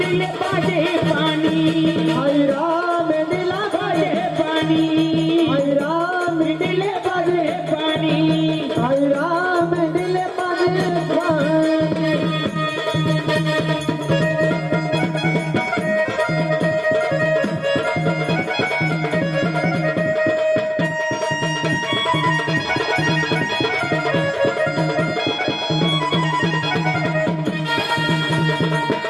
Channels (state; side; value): identical; both; correlation 1.00